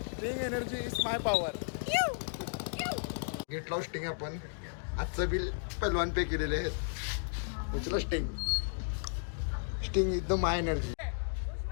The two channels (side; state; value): right; silent; digital silence